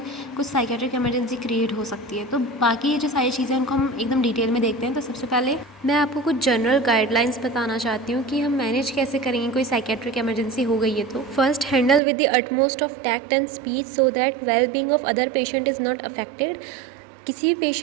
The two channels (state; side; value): drops out; left; at 12.0 s